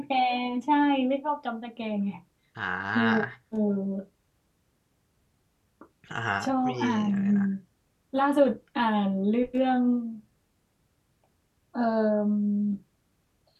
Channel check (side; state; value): both; identical; correlation 1.00